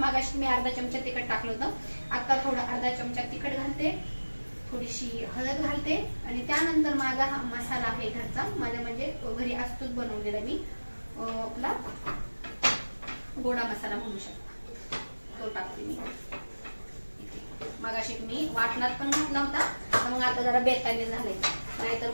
मी अर्धा चमचा तिखट टाकलं होतं, आता थोडं अर्धा चमचा तिखट घालते, थोडीशी हळद घालते आणि त्यानंतर माझा हा मसाला आहे घरचा, माझा म्हणजे घरी असतोच बनवलेला मी, आपला गोडा मसाला म्हणू शकता, तो टाकते मी. मगाशी मी वाटणात पण घातला होता, मग आता जरा बेताने झाले,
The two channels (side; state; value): both; inverted; correlation -1.00